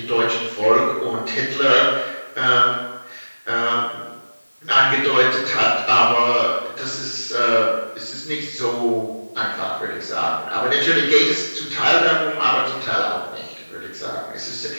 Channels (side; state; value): both; inverted; correlation -1.00